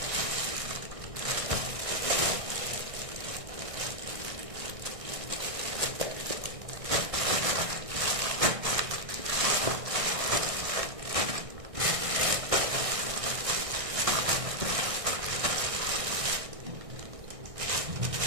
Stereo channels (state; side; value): late; left; 1.6 ms